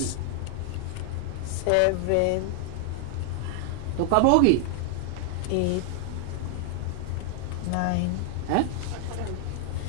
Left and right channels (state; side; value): different; both; correlation 0.00